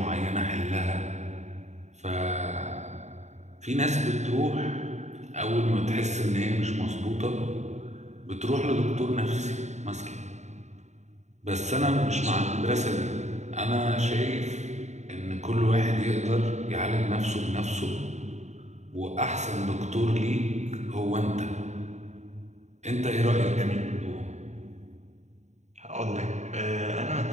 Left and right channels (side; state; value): left; late; 0.33 ms